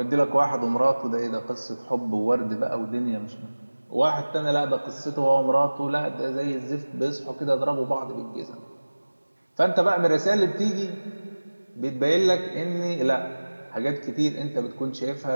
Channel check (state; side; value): inverted; both; correlation -1.00